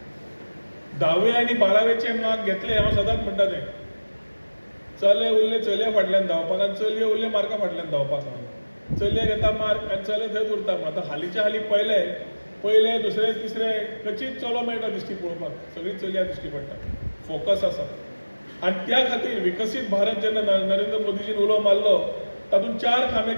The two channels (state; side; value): inverted; both; correlation -1.00